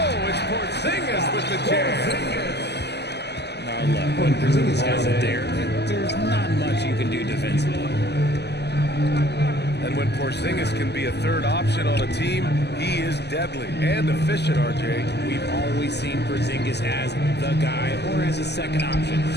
it's Porzingis with the jam. Now look, when Porzingis has it there, there's not much you can do defensively. And when Porzingis can be a third option on a team, he is deadly and efficient, RJ. We've always seen Porzingis as the guy or as a second option.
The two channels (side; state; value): right; late; 0.49 ms